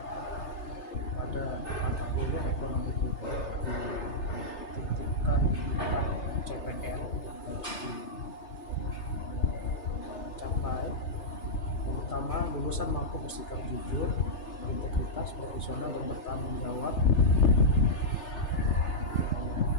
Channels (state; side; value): late; right; 3.3 ms